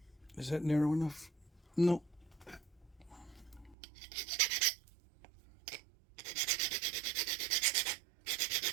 Is that narrow enough? No.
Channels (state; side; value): drops out; left; at 3.8 s